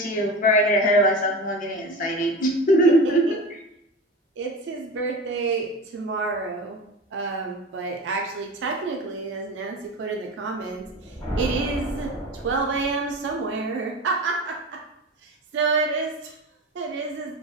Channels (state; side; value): normal; both; correlation 0.29